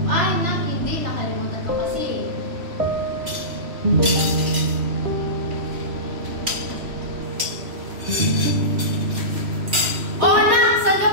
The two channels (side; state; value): left; late; 3.0 ms